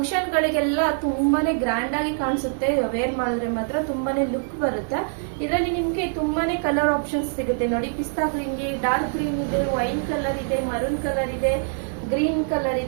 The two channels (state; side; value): silent; left; digital silence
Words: ಗಳಿಗೆಲ್ಲ ತುಂಬಾನೇ ಗ್ರ್ಯಾಂಡ್ ಆಗಿ ಕಾಣಿಸುತ್ತೆ. ವೇರ್ ಮಾಡಿದ್ರೆ ಮಾತ್ರ ತುಂಬಾನೇ ಲುಕ್ ಬರುತ್ತೆ. ಇದರಲ್ಲಿ ನಿಮ್ಗೆ ತುಂಬಾನೇ ಕಲರ್ ಆಪ್ಷನ್ಸ್ ಸಿಗುತ್ತೆ. ನೋಡಿ, ಪಿಸ್ತಾ ಗ್ರೀನ್ ಗೆ ಡಾರ್ಕ್ ಗ್ರೀನ್ ಇದೆ, ವೈನ್ ಕಲರ್ ಇದೆ, ಮರೂನ್ ಕಲರ್ ಇದೆ, ಗ್ರೀನ್ ಕಲರ್